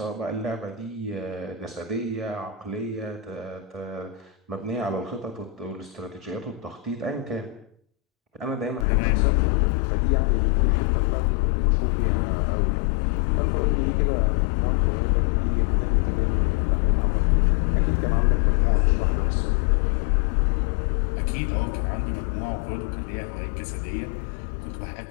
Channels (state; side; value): drops out; right; at 8.8 s